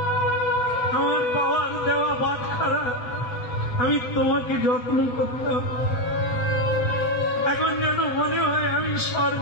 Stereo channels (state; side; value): late; right; 7.8 ms